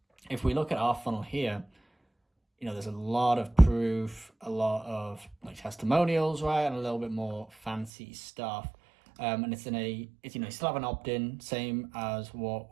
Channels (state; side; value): drops out; left; at 7.9 s